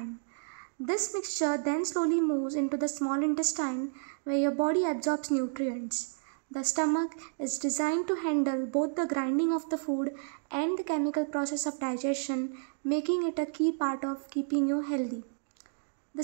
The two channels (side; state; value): left; silent; digital silence